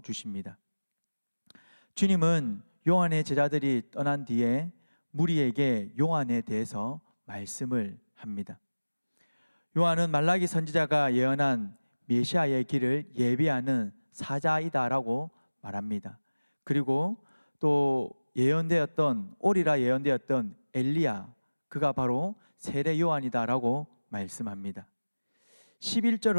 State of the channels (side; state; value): both; inverted; correlation -1.00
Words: 주님은 요한의 제자들이 떠난 뒤에 무리에게 요한에 대해서 말씀을 합니다. 요한은 말라기 선지자가 예언한 메시아의 길을 예비하는 사자이다라고 말합니다. 그리고 또 오리라 예언되었던 엘리야, 그가 바로 세례 요한이다라고 말씀합니다.